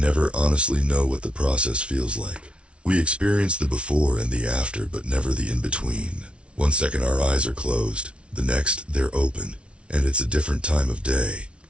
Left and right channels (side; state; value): left; late; 0.059 ms